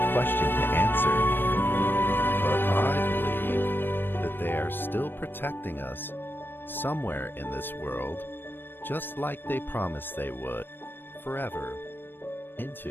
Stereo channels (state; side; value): late; right; 0.096 ms